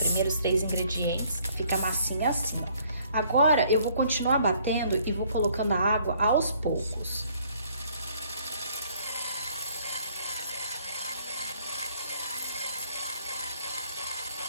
primeiros três ingredientes. Fica a massinha assim, ó. Agora, eu vou continuar batendo e vou colocando a água aos poucos.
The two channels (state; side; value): inverted; both; correlation -0.62